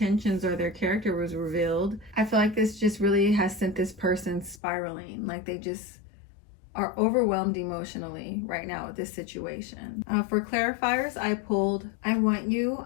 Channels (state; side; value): drops out; right; at 4.6 s